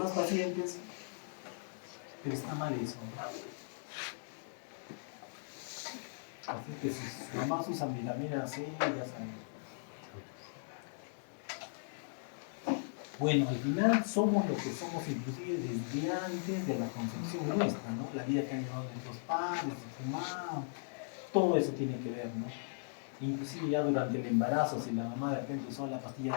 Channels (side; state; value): right; silent; digital silence